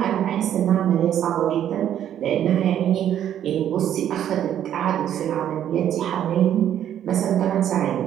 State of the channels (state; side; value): quieter; left; 10.5 dB